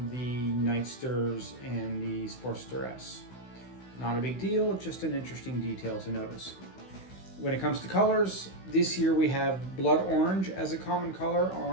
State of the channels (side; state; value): right; late; 16 ms